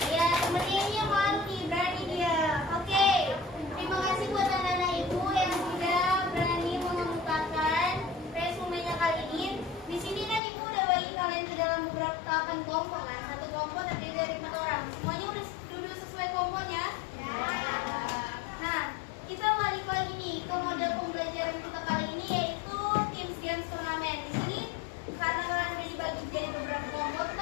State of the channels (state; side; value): drops out; right; at 10.4 s